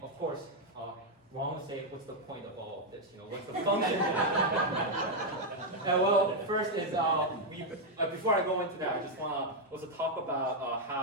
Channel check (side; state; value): both; normal; correlation 0.00